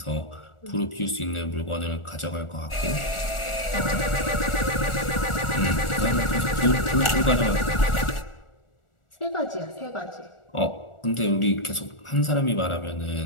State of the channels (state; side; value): late; right; 1.4 ms